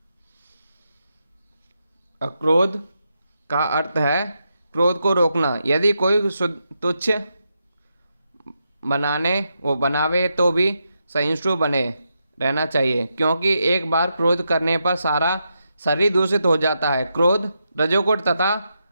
अक्रोध का अर्थ है क्रोध को रोकना। यदि कोई तुच्छ बनावे तो भी सहिष्णु बने रहना चाहिए, क्योंकि एक बार क्रोध करने पर सारा शरीर दूषित हो जाता है। क्रोध रजोगुण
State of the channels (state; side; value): inverted; both; correlation -0.84